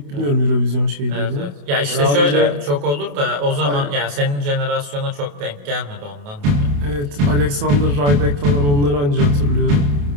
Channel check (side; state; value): left; late; 28 ms